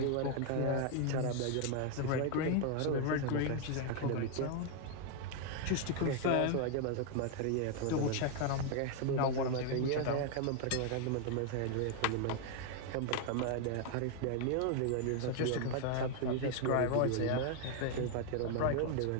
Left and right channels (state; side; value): different; both; correlation 0.00